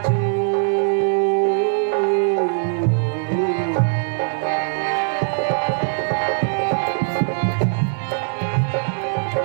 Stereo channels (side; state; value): left; silent; 59 dB below the other